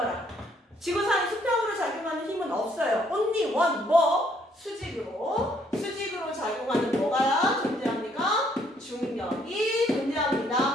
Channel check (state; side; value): normal; both; correlation 0.67